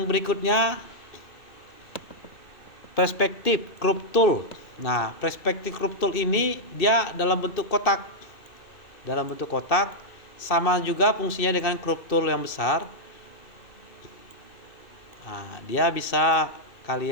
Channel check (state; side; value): late; right; 2.6 ms